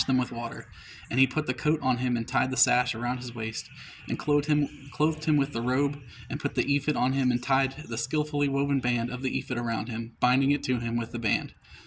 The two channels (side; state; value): both; identical; correlation 1.00